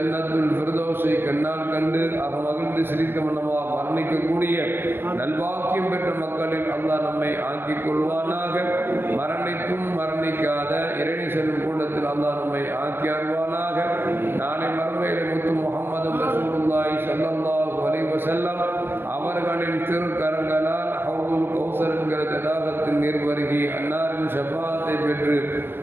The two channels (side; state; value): left; late; 0.10 ms